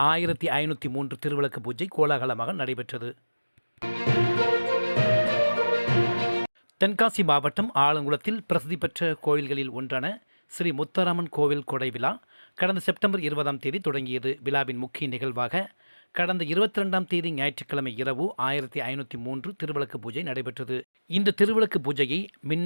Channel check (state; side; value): inverted; both; correlation -1.00